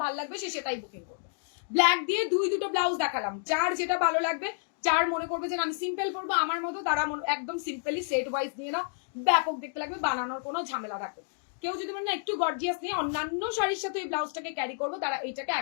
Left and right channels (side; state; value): right; silent; digital silence